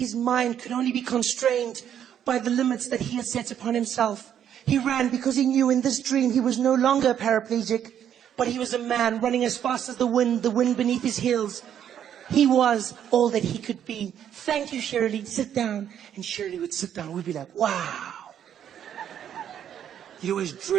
mind could only be constrained by the limits that he had set upon himself. He ran because he knew in this dream he was no longer a paraplegic, but he was a man running as fast as the wind beneath his heels. He was all that he could be. Thank you, Shirley. Sit down. And Shirley would sit down. We'd be like, wow. You'd always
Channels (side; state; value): left; quieter; 9.6 dB